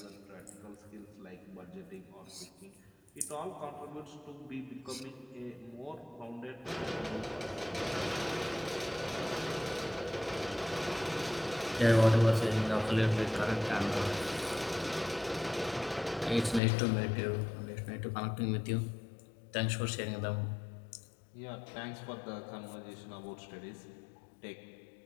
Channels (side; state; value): right; drops out; at 16.6 s